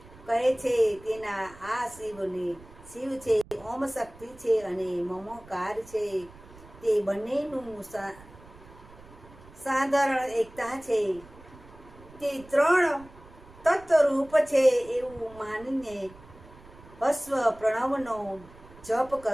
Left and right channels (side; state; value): right; noise; rumble, 21 dB below the sound